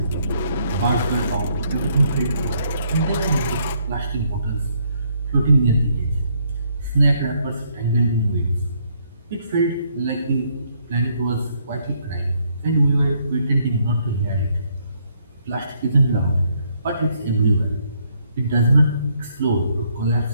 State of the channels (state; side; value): inverted; both; correlation -0.71